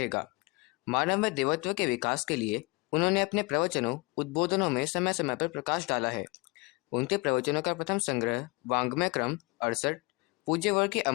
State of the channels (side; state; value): right; quieter; 26.9 dB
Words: मानव में देवत्व के विकास के लिए उन्होंने अपने प्रवचनों उद्बोधनों में समय समय पर प्रकाश डाला है। उनके प्रवचनों का प्रथम संग्रह वाङ्मय क्रम 68 पूज्य वर्ग की